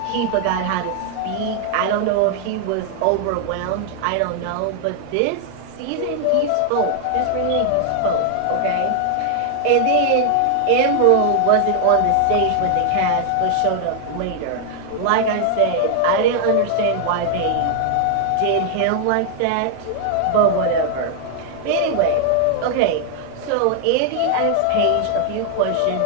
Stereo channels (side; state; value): both; different; correlation 0.00